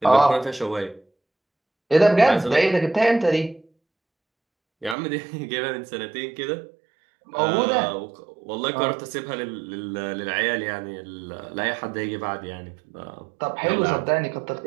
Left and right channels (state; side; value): drops out; left; at 5.0 s